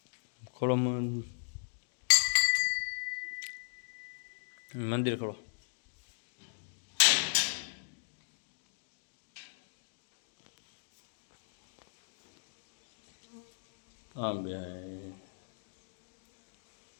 ખોલો મંદિર ખોલો. હા બે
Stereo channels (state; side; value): silent; right; digital silence